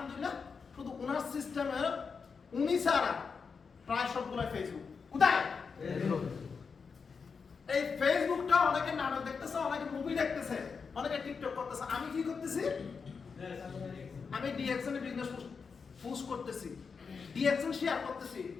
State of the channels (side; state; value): right; quieter; 5.5 dB